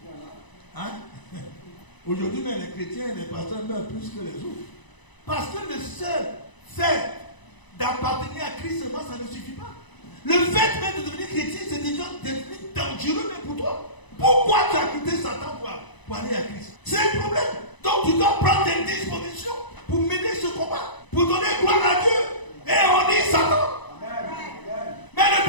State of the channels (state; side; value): late; right; 1.0 ms